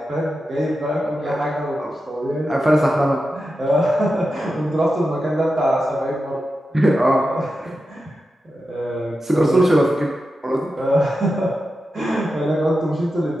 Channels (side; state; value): both; normal; correlation 0.90